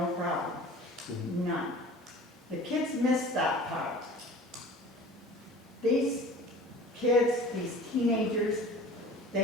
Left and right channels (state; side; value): normal; both; correlation 0.42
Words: problem, none. The kids missed that part. These kids, these teenagers,